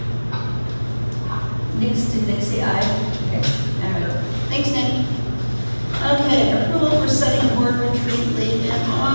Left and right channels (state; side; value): inverted; both; correlation -1.00